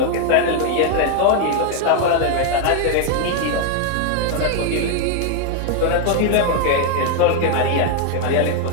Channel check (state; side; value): different; both; correlation 0.01